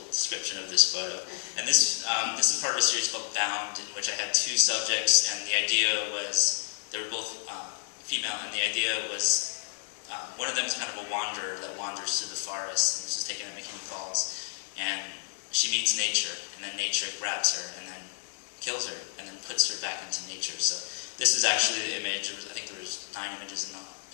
description of this photo. And this is part of a series called Bound, in which I had 2 subjects, and the idea was, they were both female, and the idea was, one of them is kind of a wanderer that wanders through the forest, and this is taken at McKinney Falls, and she meets nature, and then nature grabs her, and then kills her, and then puts her back into nature. So this is actually the image. I think there was 9 images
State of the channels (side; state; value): right; silent; digital silence